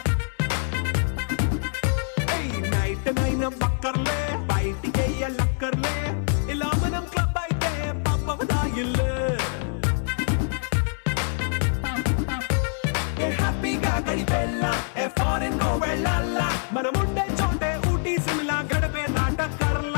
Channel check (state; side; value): silent; right; 62 dB below the other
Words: నైట్ నైన్ బక్కర్లే, బయటికి ఎల్లక్కర్లే, ఇలా మనం క్లబ్ అయితే పాపదాయిల్లే. హ్యాపీగా గడిపెల్లా, ఫారెన్ వెళ్ళాలా, మనముండే చోటే ఊటీ సిమ్లా గడిపే